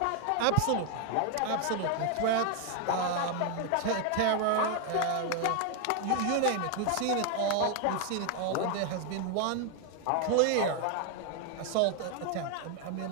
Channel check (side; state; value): both; different; correlation 0.00